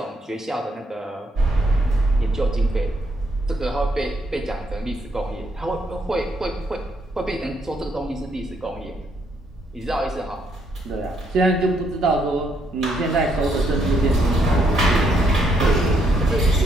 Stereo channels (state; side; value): normal; both; correlation 0.73